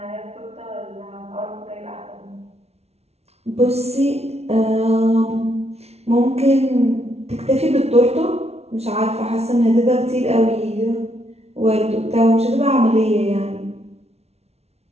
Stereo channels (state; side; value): late; left; 0.31 ms